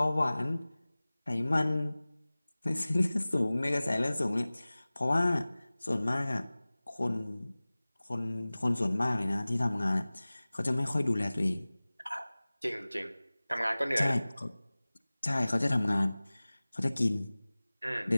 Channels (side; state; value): both; inverted; correlation -0.99